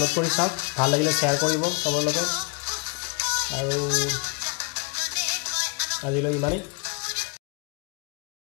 কৰি চাওক ভাল লাগিলে শ্বেয়াৰ কৰিব সবৰ লগত আৰু আজিলৈ ইমানেই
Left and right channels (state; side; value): quieter; right; 35.1 dB